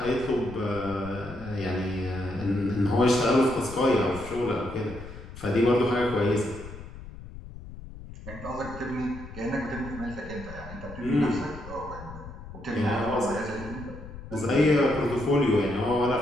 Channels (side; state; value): left; noise; rumble, 13 dB below the sound